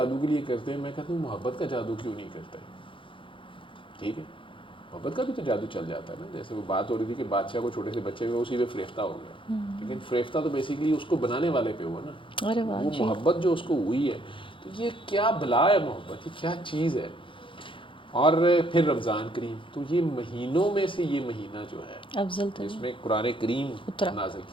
کے لیے کرتے ہیں. میں کہتا ہوں محبت کا جادو کیوں نہیں کرتے؟ ٹھیک ہے، محبت کا بھی تو جادو چل جاتا ہے نا. جیسے وہ بات ہو رہی تھی کہ بادشاہ کو چھوٹے سے بچے ہوئے اسی پہ فریفتہ ہو گیا، لیکن فریفتہ تو بیسیکلی اس کو بنانے والے پہ ہوا نا. وہ محبت جو اس کو ہوئی ہے، تو یہ کیا بلا ہے محبت، یہ کیا چیز ہے. اور پھر رمضان کریم، تو یہ مہینوں میں سے یہ مہینہ جو ہے افضل جس میں قرآن کریم نازل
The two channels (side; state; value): right; late; 0.25 ms